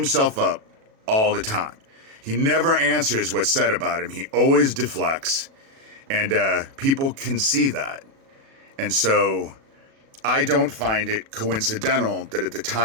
up all the time. He never answers what's said about him. He always deflects, and people can see that. And so I don't find it coincidental that at the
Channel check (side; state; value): left; late; 37 ms